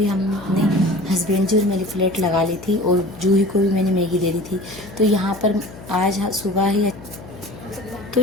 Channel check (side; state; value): left; noise; hum, 16 dB below the sound